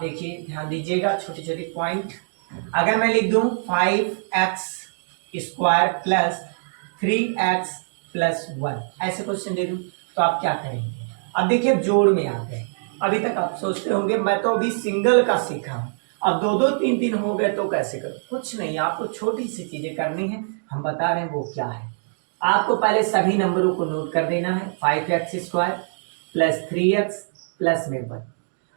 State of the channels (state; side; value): silent; left; digital silence